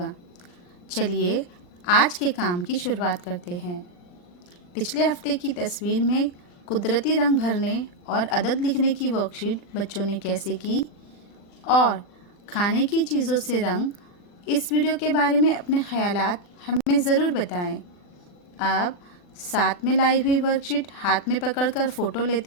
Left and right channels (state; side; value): late; right; 40 ms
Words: चलिए आज के काम की शुरुआत करते हैं। पिछले हफ्ते की तस्वीर में कुदरती रंग भरने और अदद लिखने की वर्कशीट बच्चों ने कैसे की और खाने की चीज़ों से रंग, इस वीडियो के बारे में अपने ख्यालात हमें ज़रूर बताएं। अब साथ में लाई हुई वर्कशीट हाथ में पकड़कर फ़ोटो